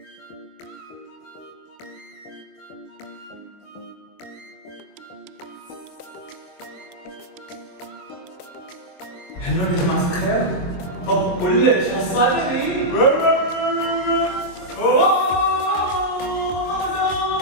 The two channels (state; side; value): late; right; 23 ms